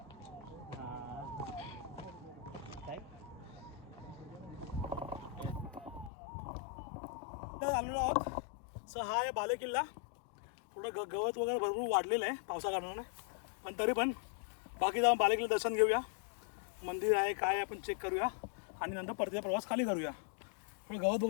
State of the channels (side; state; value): right; drops out; at 6.1 s